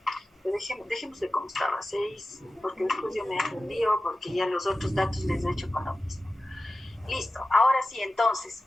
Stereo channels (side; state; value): both; normal; correlation 0.95